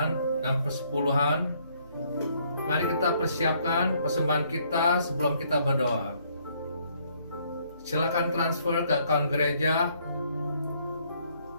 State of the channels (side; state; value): both; inverted; correlation -0.67